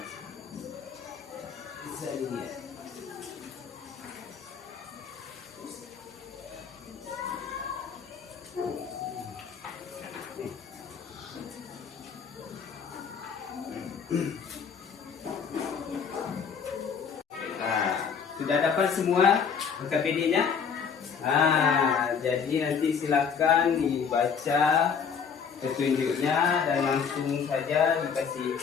Bisa dilihat. Nah, sudah dapat semua KPD-nya? Jadi nanti silakan dibaca petunjuknya dan langsung saja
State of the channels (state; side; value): quieter; right; 6.5 dB